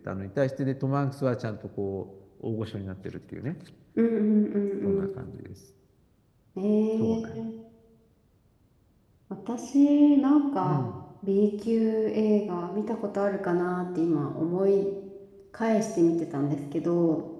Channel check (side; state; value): both; identical; correlation 1.00